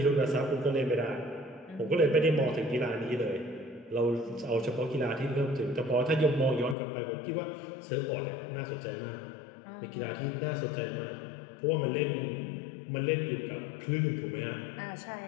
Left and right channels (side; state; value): right; drops out; at 6.8 s